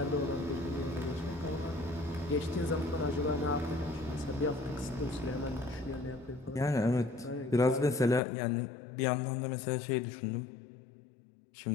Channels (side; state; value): right; drops out; at 8.2 s